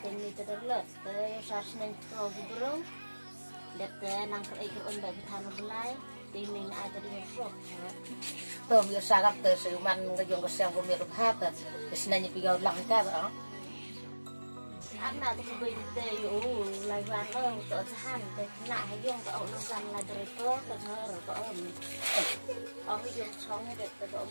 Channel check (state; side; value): inverted; both; correlation -1.00